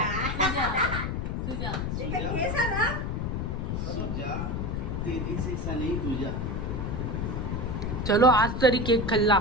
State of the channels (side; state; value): left; noise; rumble, 2 dB below the sound